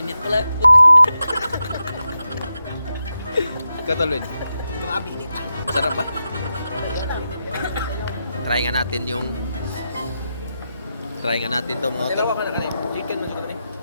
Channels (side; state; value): both; inverted; correlation -0.88